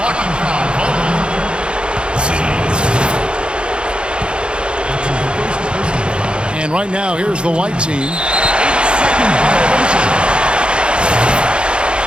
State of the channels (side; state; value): left; late; 0.054 ms